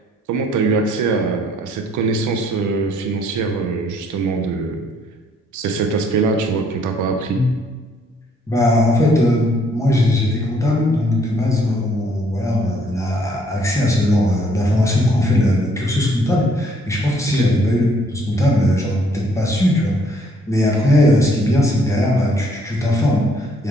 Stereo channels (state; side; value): normal; both; correlation 0.65